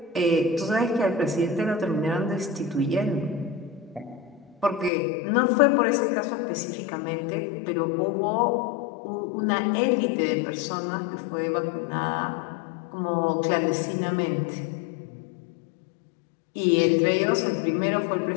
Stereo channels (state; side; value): drops out; right; at 4.9 s